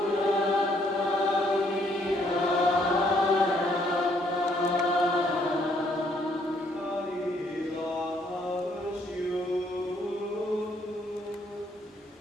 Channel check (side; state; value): both; normal; correlation 0.68